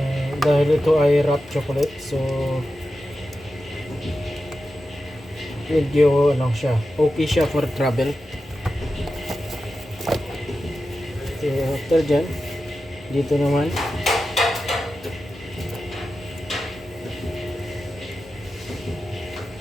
Dahil ito ay wrap chocolate, so medyo okay siya for travel. So after dyan, dito naman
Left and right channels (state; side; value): normal; both; correlation 0.91